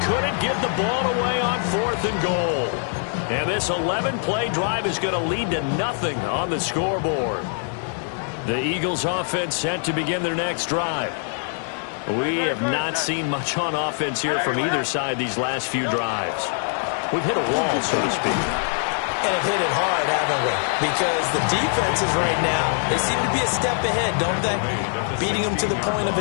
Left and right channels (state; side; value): silent; right; 63 dB below the other